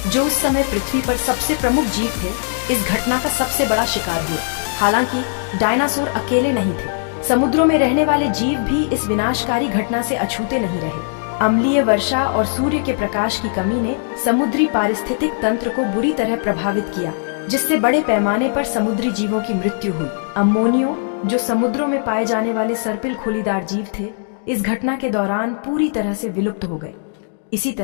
जो उस समय पृथ्वी पर सबसे प्रमुख जीव थे, इस घटना का सबसे बड़ा शिकार हुए। हालांकि डायनासोर अकेले नहीं थे। समुद्रों में रहने वाले जीव भी इस विनाशकारी घटना से अछूते नहीं रहे। अम्लीय वर्षा और सूर्य के प्रकाश की कमी ने समुद्री पारिस्थितिक तंत्र को बुरी तरह प्रभावित किया, जिससे बड़े पैमाने पर समुद्री जीवों की मृत्यु हुई। अम्मोनियो, जो समुद्रों में पाए जाने वाले सर्पिल खोलीदार जीव थे, इस घटना के दौरान पूरी तरह से विलुप्त हो गए। इसी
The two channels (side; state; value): right; silent; digital silence